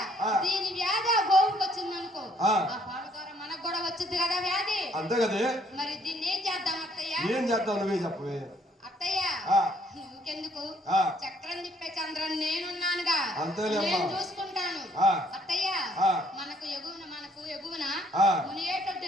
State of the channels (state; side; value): normal; both; correlation 0.64